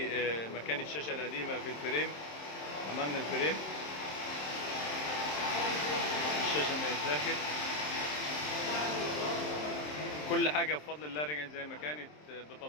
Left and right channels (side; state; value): right; late; 27 ms